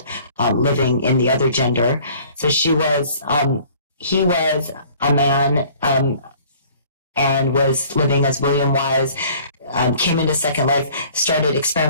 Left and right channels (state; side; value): inverted; both; correlation -0.52